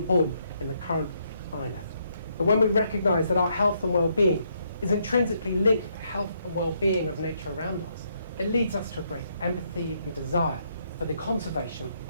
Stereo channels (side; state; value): both; inverted; correlation -0.74